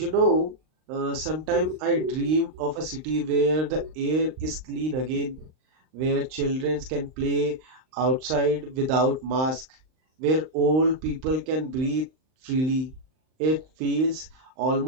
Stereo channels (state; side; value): late; left; 39 ms